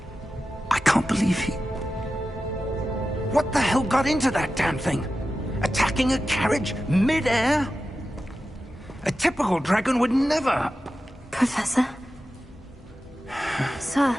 I can't believe he... What the hell got into that damn thing? Attacking a carriage mid-air? A typical dragon would never... Professor? Sir,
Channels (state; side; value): normal; both; correlation 0.93